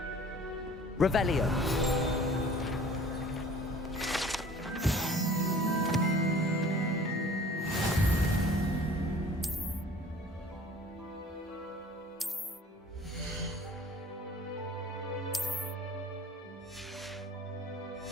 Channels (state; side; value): normal; both; correlation 0.48